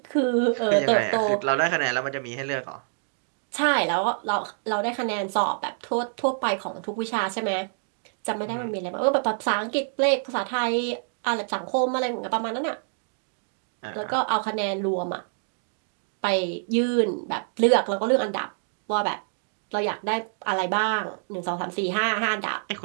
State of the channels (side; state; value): left; silent; digital silence